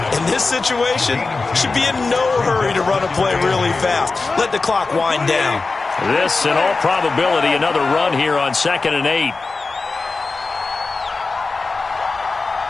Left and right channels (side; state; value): right; quieter; 3.9 dB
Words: in this situation, should be in no hurry to run a play really fast. Let the clock wind down. This, in all probability, another run here on 2nd and 8.